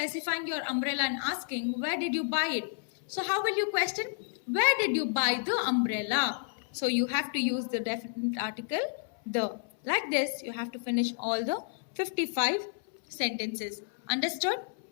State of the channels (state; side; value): silent; right; 57 dB below the other